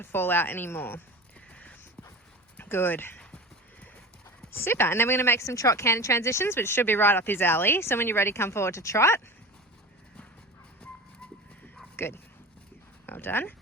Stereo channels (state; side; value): normal; both; correlation 0.33